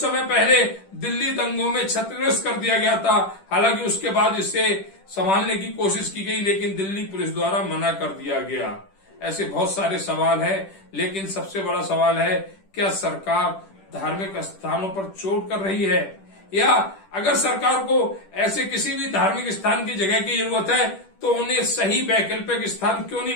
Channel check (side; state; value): right; late; 10 ms